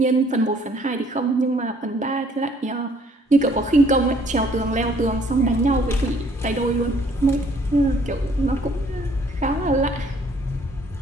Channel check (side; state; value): both; normal; correlation 0.62